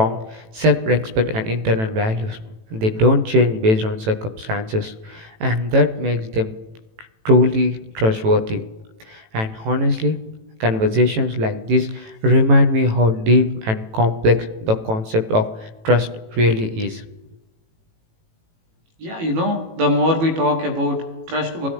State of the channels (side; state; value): left; late; 18 ms